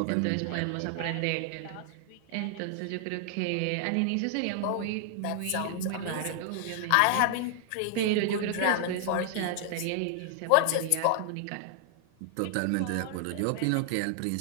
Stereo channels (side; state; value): both; different; correlation 0.00